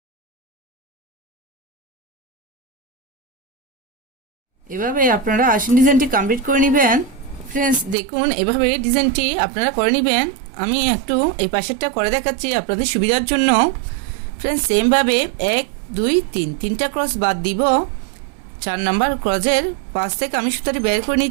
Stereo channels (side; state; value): left; drops out; at 8.0 s